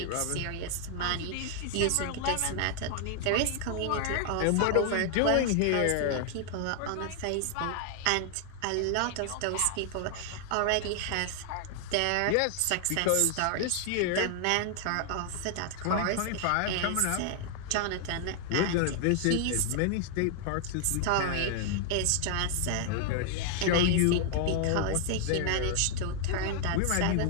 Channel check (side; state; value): both; different; correlation 0.00